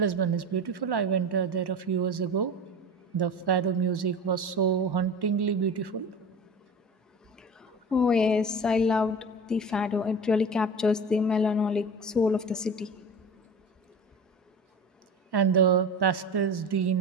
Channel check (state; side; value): normal; both; correlation 0.32